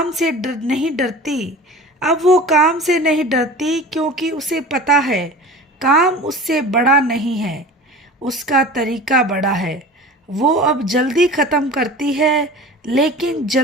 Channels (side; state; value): both; normal; correlation 0.37